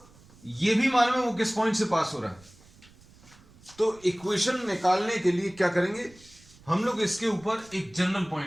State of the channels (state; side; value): noise; right; rumble, 26 dB below the sound